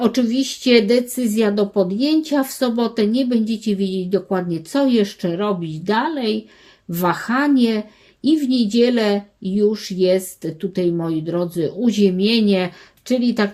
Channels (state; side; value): identical; both; correlation 1.00